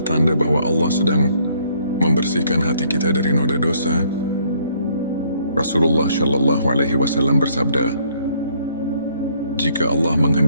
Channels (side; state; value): both; inverted; correlation -0.65